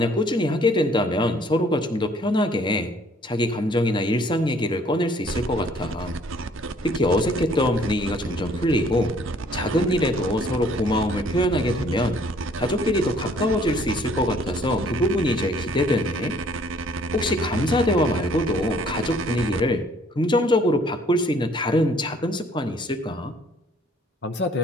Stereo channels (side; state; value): both; normal; correlation 0.59